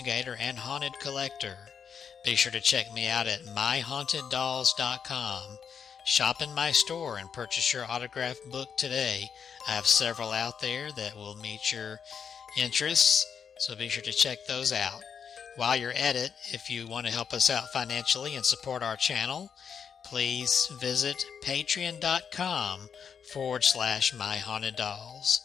and haunted collector. Be sure to check me out at myhauntedDolls.com. Shop in my store and purchase your autographed book today. I have several out there that will meet your interests, so be sure to check those out. While you're at it, if you want to help us out financially and support our channel, please visit patreon.com/myhauntedDolls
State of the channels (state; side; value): quieter; right; 7.0 dB